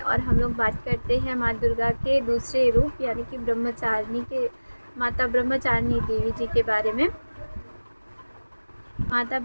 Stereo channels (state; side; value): inverted; both; correlation -1.00